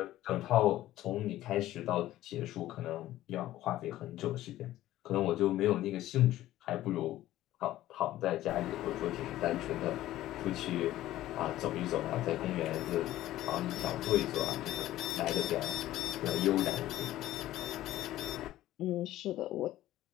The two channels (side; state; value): right; quieter; 14.6 dB